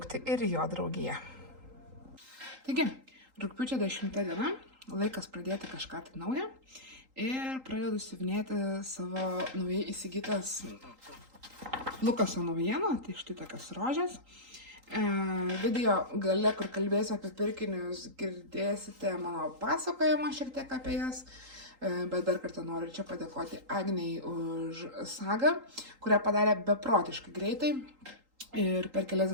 ir jo draugiją. Taigi, rugpjūčio 10 diena, laikas pradėti kažką tai naują ir pradedu siuvinėti savo naujai įsigytas Lukaso naujieną, tai štai tokias rožės. Video gale, kur kalbėsiu apie pirkinius, girdėsite mano pasakojimą šiek tiek apie jas, bet dar kartą noriu čia padėkoti Agnei už sagą, kurią padarė beprotiškai greitai ir per kelias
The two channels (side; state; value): left; late; 3.8 ms